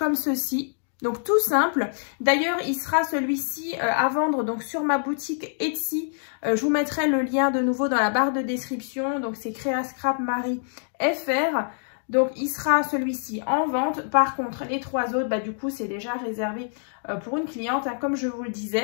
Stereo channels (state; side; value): silent; right; digital silence